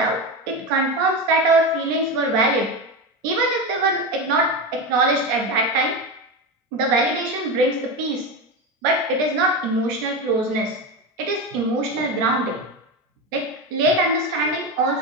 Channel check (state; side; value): normal; both; correlation 0.18